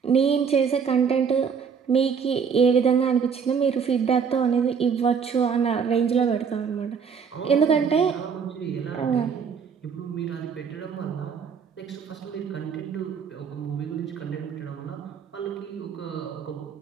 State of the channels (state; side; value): quieter; left; 6.5 dB